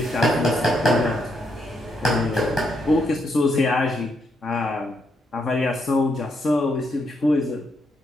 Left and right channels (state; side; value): normal; both; correlation 0.78